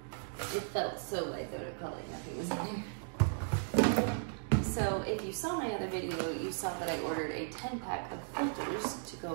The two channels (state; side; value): silent; left; digital silence